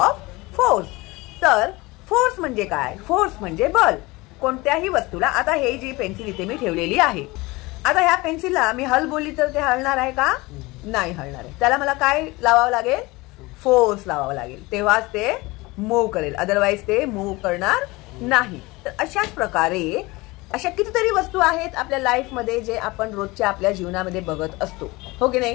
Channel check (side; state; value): right; quieter; 22.4 dB